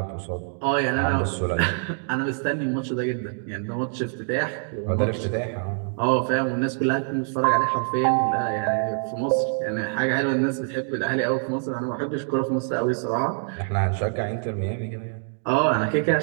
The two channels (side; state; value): left; silent; 62 dB below the other